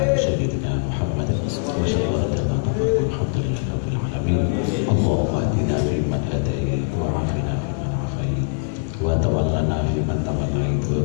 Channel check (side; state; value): right; silent; digital silence